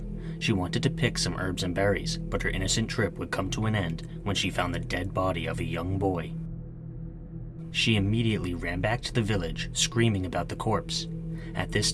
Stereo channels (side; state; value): both; identical; correlation 1.00